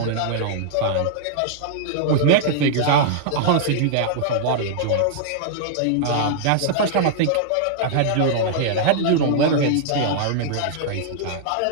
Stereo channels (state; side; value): different; both; correlation -0.01